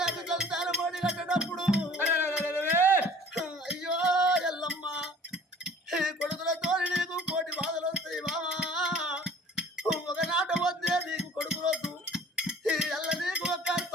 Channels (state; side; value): normal; both; correlation 0.48